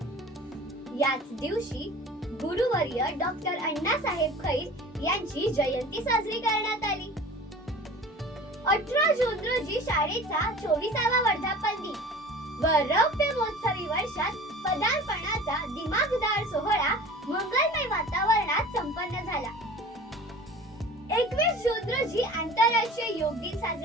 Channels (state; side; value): normal; both; correlation 0.41